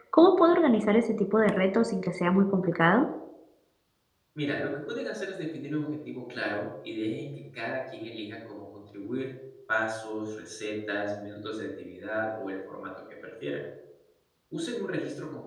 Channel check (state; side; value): identical; both; correlation 1.00